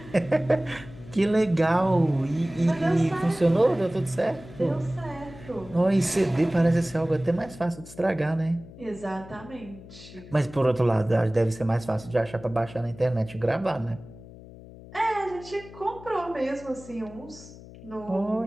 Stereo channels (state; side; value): noise; left; hum, 18 dB below the sound